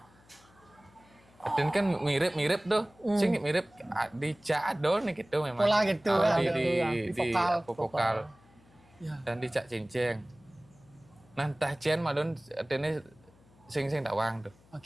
Dan kan mirip tuh, sing mirip di cak ada nih gitu memang. Pola gitu di vokal. Ya. Dan di cak cincin. Nah entah cian malun artinya sing tawang tuh.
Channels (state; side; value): noise; left; hum, 28 dB below the sound